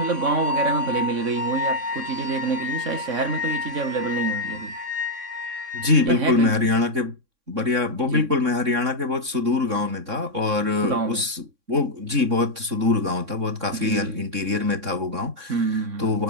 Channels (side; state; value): left; late; 3.6 ms